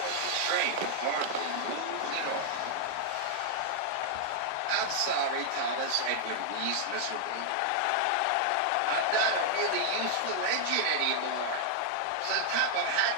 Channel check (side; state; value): both; different; correlation -0.01